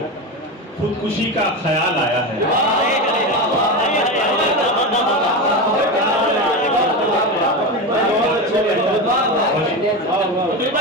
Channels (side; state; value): both; normal; correlation 0.19